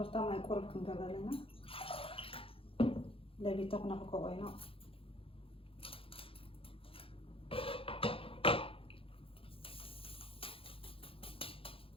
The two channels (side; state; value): right; late; 0.27 ms